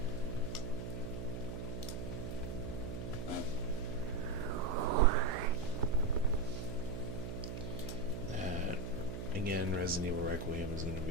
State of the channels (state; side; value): noise; right; hum, 5 dB below the sound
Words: Again, Resident Evil Requiem is going to